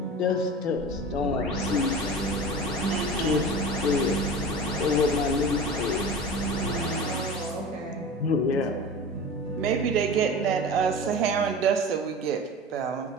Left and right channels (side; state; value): both; normal; correlation 0.33